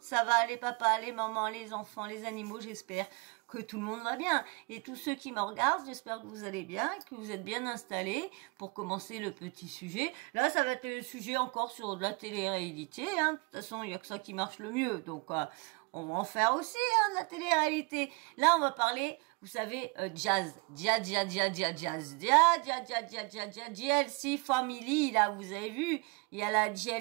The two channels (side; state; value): left; quieter; 29.3 dB